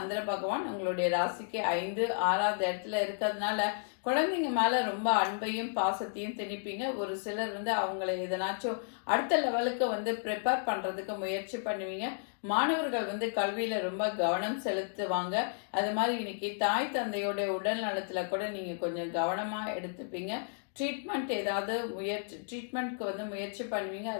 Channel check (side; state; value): right; silent; digital silence